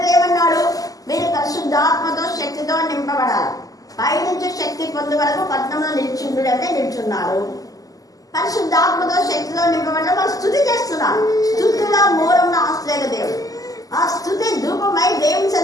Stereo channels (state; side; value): late; right; 0.17 ms